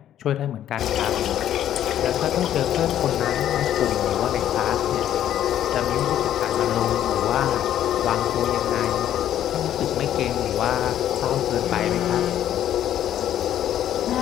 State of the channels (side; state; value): right; quieter; 11.2 dB